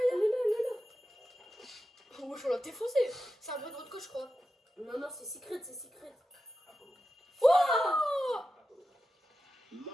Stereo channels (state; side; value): normal; both; correlation 0.91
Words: là. Oh, wesh, on l'a défoncé. C'est un bon road coach, je crois. Non, c'est secret. Oh!